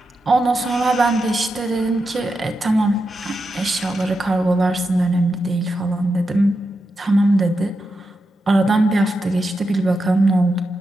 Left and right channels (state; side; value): normal; both; correlation 0.87